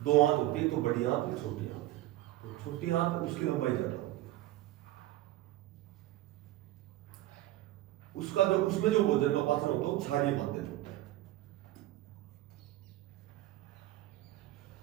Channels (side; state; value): left; quieter; 15.8 dB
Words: दो आंत होती है, तो बड़ी आंत और छोटी आंत। तो छोटी आंत उसकी लंबाई ज्यादा होती है, उसका जो उसमें जो भोजन का पाचन होता है वो क्षारीय माध्यम होता है।